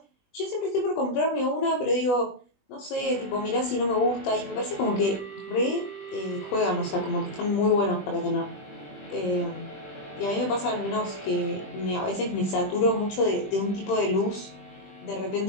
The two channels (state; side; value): late; right; 20 ms